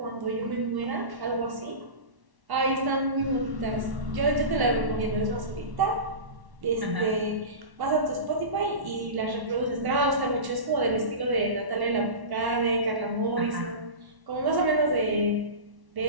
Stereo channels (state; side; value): late; left; 1.1 ms